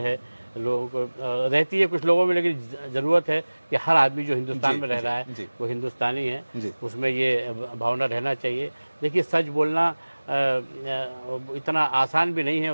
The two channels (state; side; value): inverted; both; correlation -1.00